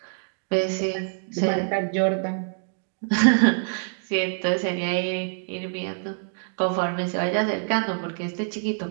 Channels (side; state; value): left; silent; digital silence